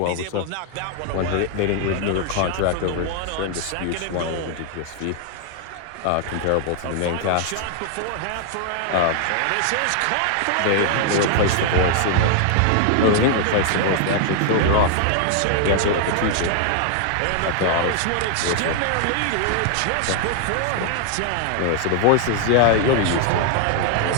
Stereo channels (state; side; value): different; both; correlation 0.00